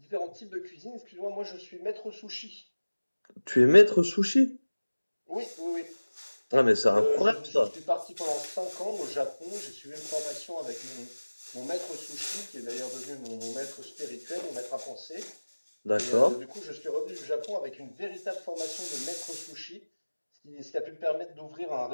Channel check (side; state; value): both; inverted; correlation -1.00